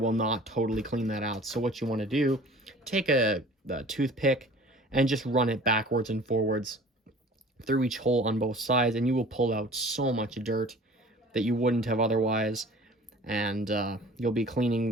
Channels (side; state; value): both; normal; correlation 0.46